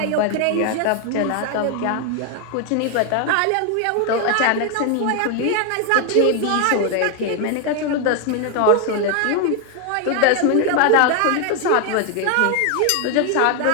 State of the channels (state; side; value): different; both; correlation 0.01